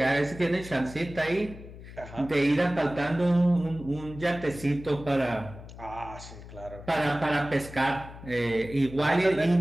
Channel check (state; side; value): noise; left; hum, 15 dB below the sound